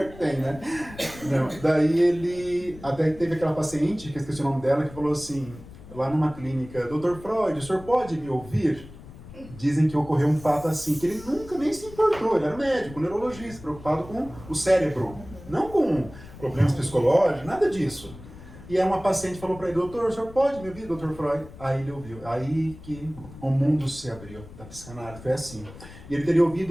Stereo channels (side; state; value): left; noise; rumble, 17 dB below the sound